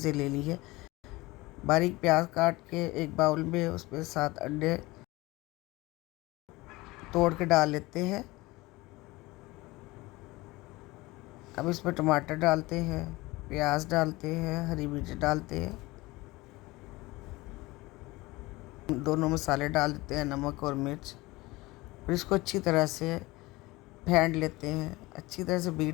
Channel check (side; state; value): right; quieter; 21.0 dB